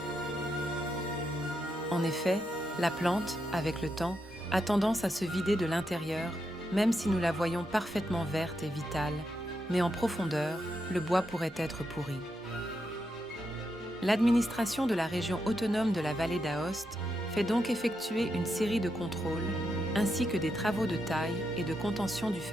En effet, la plante, avec le temps, a tendance à se vider de l'intérieur, même si nous la voyons parfaitement verte et vitale, mais en profondeur, le bois pourrait être pourri. L'administration de la région autonome de la vallée d'Aoste fait donc effectuer une série de contrôles, ainsi que des travaux de taille et de contention du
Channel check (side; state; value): both; normal; correlation 0.83